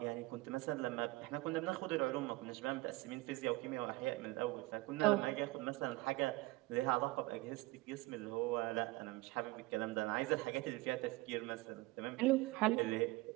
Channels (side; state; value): left; quieter; 21.2 dB